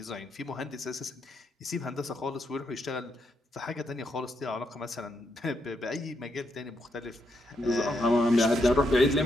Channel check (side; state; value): both; normal; correlation 0.79